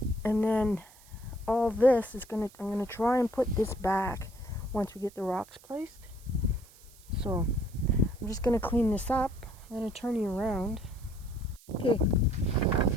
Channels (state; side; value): noise; right; hiss, 24 dB below the sound